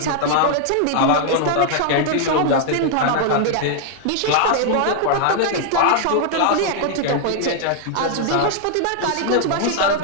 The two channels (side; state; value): both; different; correlation 0.00